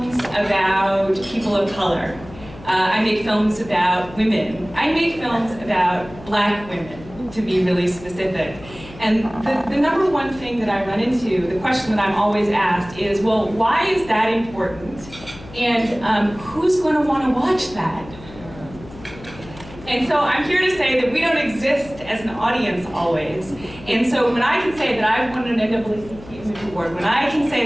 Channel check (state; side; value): noise; left; hum, 18 dB below the sound